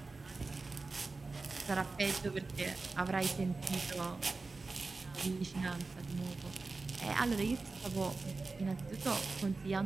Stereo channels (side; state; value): left; quieter; 3.8 dB